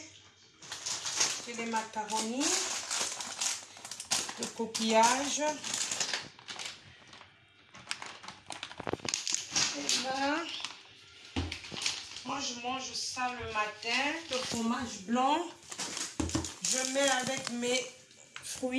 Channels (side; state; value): both; identical; correlation 1.00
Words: j'ai les macaronis, le coquillage. Et là, moi je mange ça le matin, le fromage blanc. Je mets avec mes